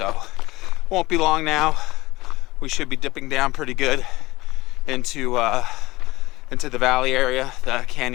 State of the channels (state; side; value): quieter; right; 19.7 dB